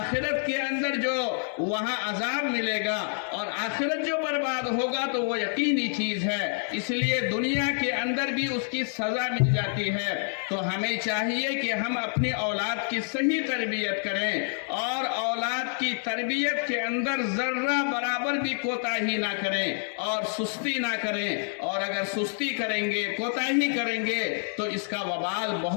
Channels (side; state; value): right; silent; 60 dB below the other